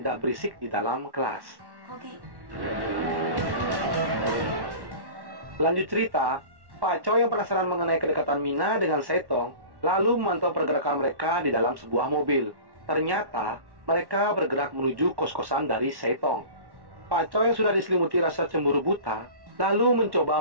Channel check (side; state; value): left; late; 1.1 ms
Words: berisik di dalam kelas. 거기. Lanjut cerita, Pak Choi yang penasaran mengenai kedekatan Mina dengan Saitong lalu memantau pergerakan mereka di dalam sebuah mobil. Ternyata mereka bergerak menuju kos-kosan dari Saitong. Pak Choi yang sudah diselimuti rasa cemburu buta lalu